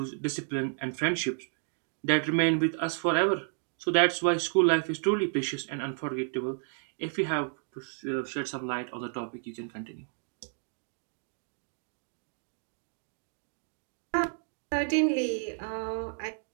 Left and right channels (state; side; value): silent; left; 57 dB below the other